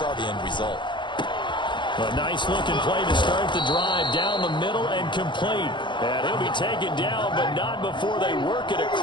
the end result. A nice-looking play to start the drive down the middle and complete. And he'll be taken down, but not before they work it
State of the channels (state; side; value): late; right; 0.23 ms